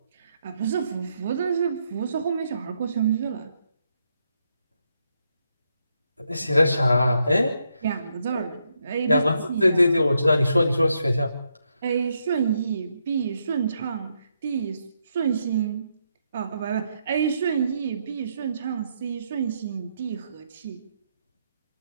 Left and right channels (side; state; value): both; inverted; correlation -0.79